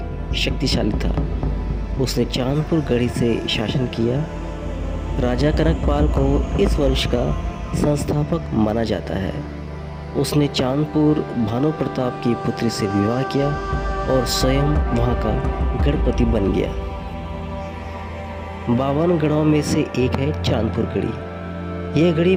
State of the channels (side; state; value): both; identical; correlation 1.00